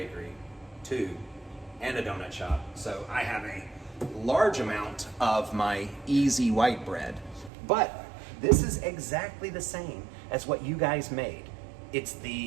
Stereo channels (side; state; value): left; drops out; at 7.5 s